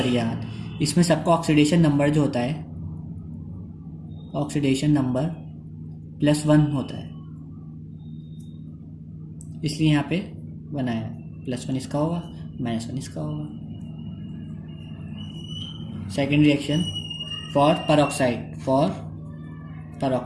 इसमें सबका ऑक्सीडेशन नंबर जो होता है, ऑक्सीडेशन नंबर +1 होता है, इसलिए यहाँ पे बनाया +1 इसका होगा, -1 इसका होगा। Second reaction for peroxide,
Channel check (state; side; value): identical; both; correlation 1.00